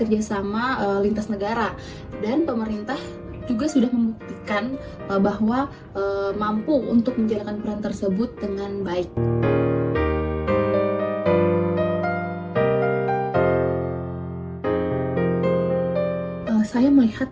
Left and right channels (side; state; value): both; identical; correlation 1.00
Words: lintas negara, dan pemerintah juga sudah membuktikan bahwa mampu untuk menjalankan peran tersebut dengan baik. Saya melihat